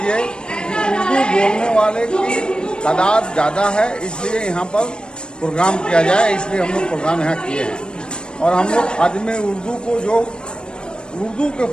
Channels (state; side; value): late; right; 0.052 ms